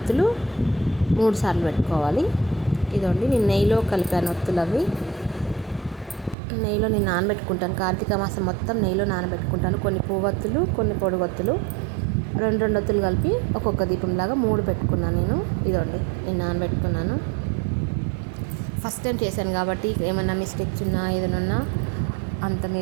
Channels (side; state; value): left; drops out; at 6.4 s